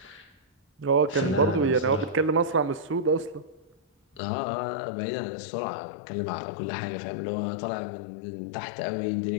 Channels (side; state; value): right; drops out; at 4.2 s